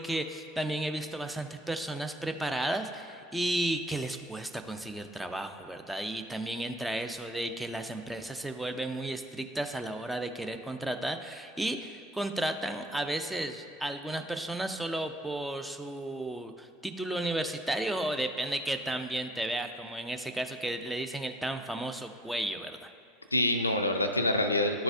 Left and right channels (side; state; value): both; normal; correlation 0.43